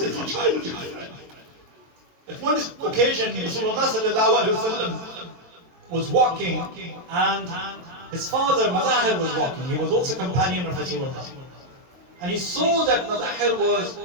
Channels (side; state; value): left; late; 22 ms